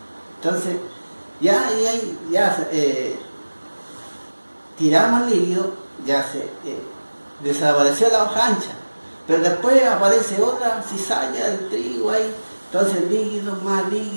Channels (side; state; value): both; inverted; correlation -1.00